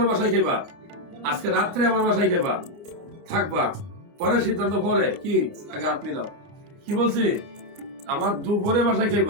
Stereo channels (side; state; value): left; late; 29 ms